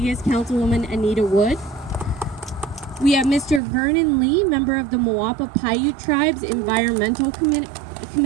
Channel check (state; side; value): drops out; left; at 3.6 s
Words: Councilwoman Anita Wood. We have Mr. Vernon Lee, member of the Moapa Paiute Tribe's Environmental